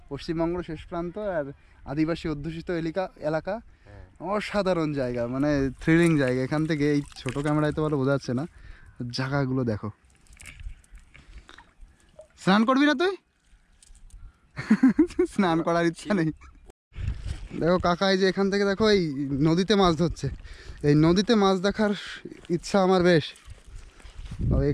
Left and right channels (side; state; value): both; identical; correlation 1.00